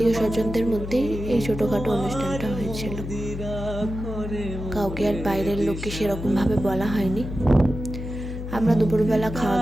স্বজনদের মধ্যেই এই ছোটোখাটো অনুষ্ঠানটা হয়েছিল। কাউকে আর বাইরের লোককে সেরকমভাবে বলা হয়নি। আমরা দুপুরবেলা খাওয়া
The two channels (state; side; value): noise; left; hum, 7 dB below the sound